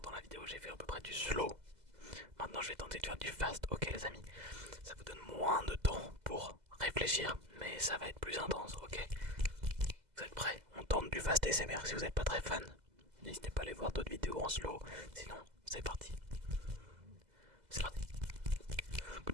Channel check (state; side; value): late; left; 2.0 ms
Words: dans la vidéo, j'ai fait à peu près du slow. Maintenant, je vais tenter de faire du fast, ok, les amis. Ça vous donne moins de temps pour réfléchir, mais ça va être plus intense, ok? Vous êtes prêts? On tente du fast SMR. Si vous n'êtes pas très fan, n'hésitez pas à aller voir d'autres vidéos en slow. Sinon, c'est parti.